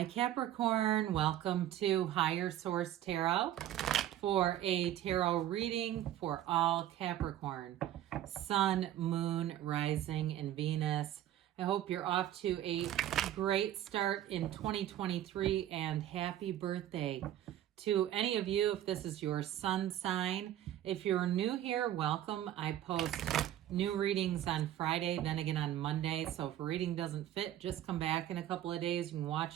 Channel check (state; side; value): quieter; left; 12.3 dB